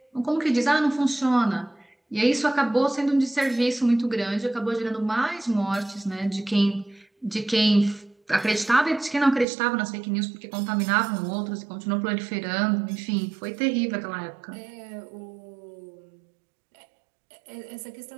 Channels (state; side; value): drops out; left; at 9.5 s